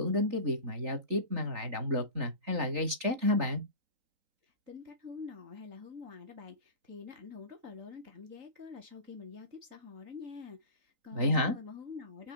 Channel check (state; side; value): late; left; 3.4 ms